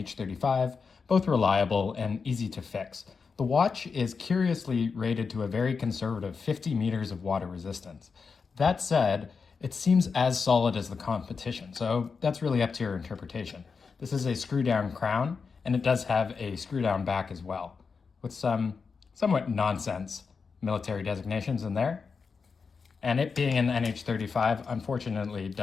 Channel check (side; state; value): right; quieter; 5.2 dB